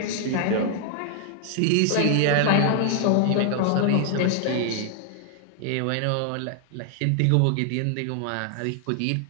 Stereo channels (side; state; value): both; different; correlation 0.00